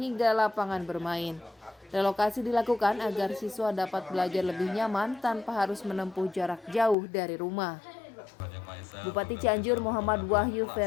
lapangan bermain. Relokasi dilakukan agar siswa dapat belajar lebih nyaman tanpa harus menempuh jarak jauh dari rumah. Bupati Cianjur Muhammad Wahyu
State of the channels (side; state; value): right; drops out; at 7.0 s